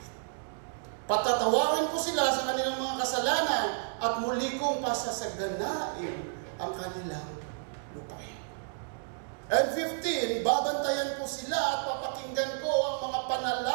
Patatawarin ko sila sa kanilang mga kasalanan at muli kong pasasaganain ang kanilang lupain. And 15, babantayan ko sila at papakinggan ko ang mga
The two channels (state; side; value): silent; left; digital silence